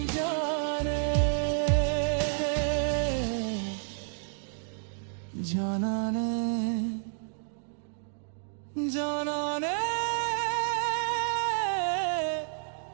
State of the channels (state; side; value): silent; left; digital silence